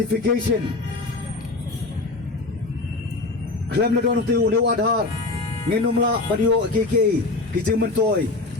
klem na don tu uni u Aadhaar nginumla padio kiki kijeng mentoy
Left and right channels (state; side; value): quieter; right; 3.4 dB